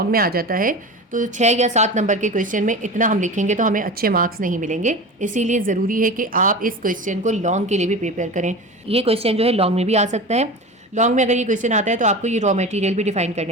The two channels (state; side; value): normal; both; correlation 0.31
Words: में आ जाता है तो 6 या 7 नंबर के क्वेश्चन में इतना हम लिखेंगे तो हमें अच्छे मार्क्स नहीं मिलेंगे। इसीलिए ज़रूरी है कि आप इस क्वेश्चन को लॉन्ग के लिए भी प्रिपेयर करें। ये क्वेश्चन जो है लॉन्ग में भी आ सकता है। लॉन्ग में अगर ये क्वेश्चन आता है तो आपको ये रॉ मटेरियल भी डिफाइन